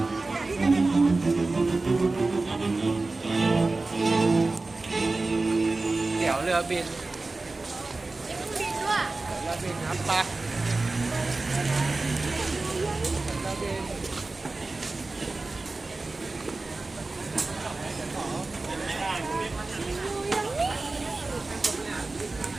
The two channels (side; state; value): left; quieter; 3.4 dB